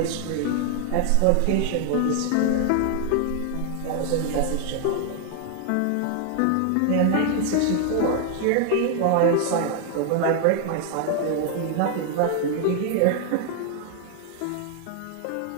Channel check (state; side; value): different; both; correlation 0.00